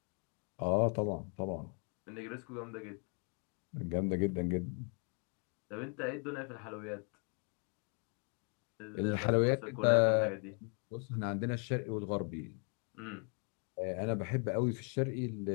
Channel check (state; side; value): quieter; right; 39.4 dB